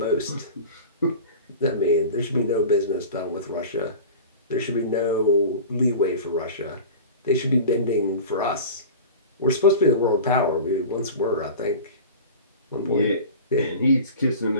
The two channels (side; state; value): both; inverted; correlation -0.35